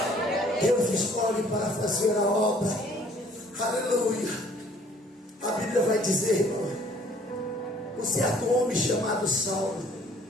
Deus escolhe para fazer a obra, aleluia. A Bíblia vai dizer, irmão, um certo homem chamado Saulo,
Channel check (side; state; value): both; normal; correlation 0.58